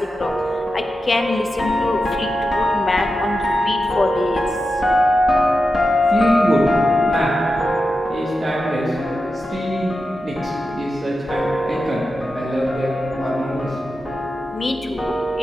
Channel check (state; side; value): normal; both; correlation 0.90